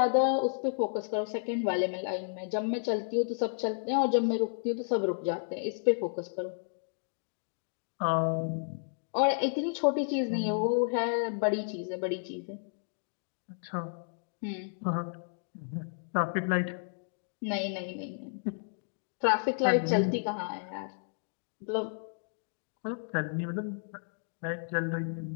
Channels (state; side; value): silent; right; digital silence